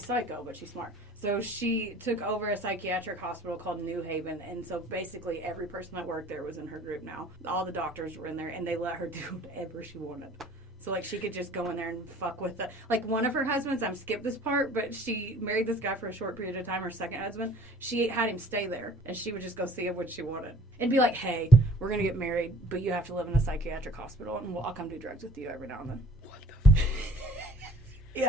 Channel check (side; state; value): both; normal; correlation 0.52